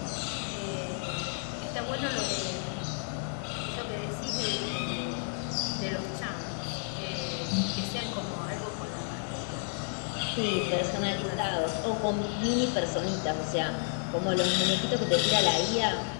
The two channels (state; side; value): silent; right; 57 dB below the other